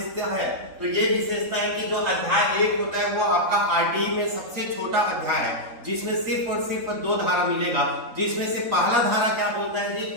है। तो ये विशेषता है कि जो अध्याय 1 होता है वो आपका आरटीई में सबसे छोटा अध्याय है, जिसमें सिर्फ और सिर्फ 2 धारा मिलेगा, जिसमें से पहला धारा क्या बोलता है जी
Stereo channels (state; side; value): late; left; 3.9 ms